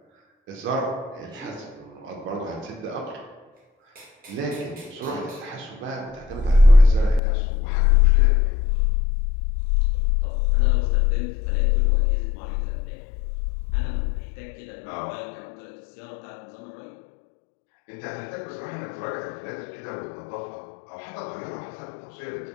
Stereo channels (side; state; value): right; drops out; at 7.2 s